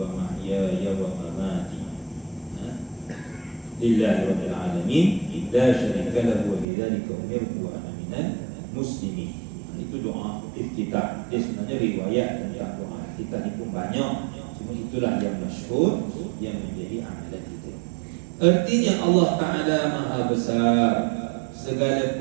mahyaya wa mamati lillahi rabbil alamin la syarika lahu wa bidzalika umirtu wa ana minal muslimin. Itu doa iftitah. Dia sebenarnya riwayat tentang doa iftitah ni pun banyak, cuma itulah yang masyhur yang menjadi amalan kita. Artinya Allah Ta'ala Maha Besar,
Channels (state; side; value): drops out; left; at 6.7 s